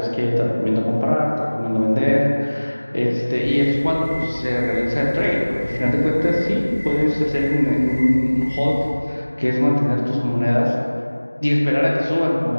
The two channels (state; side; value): inverted; both; correlation -1.00